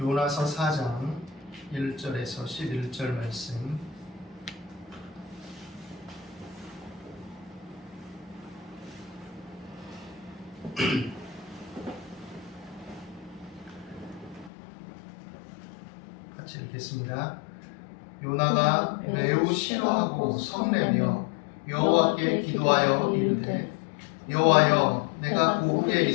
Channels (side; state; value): right; drops out; at 14.5 s